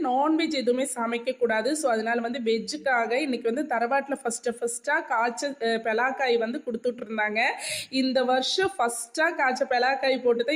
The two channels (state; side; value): identical; both; correlation 1.00